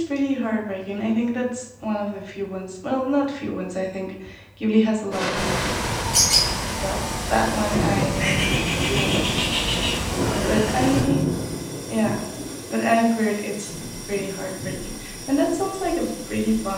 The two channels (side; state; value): both; identical; correlation 1.00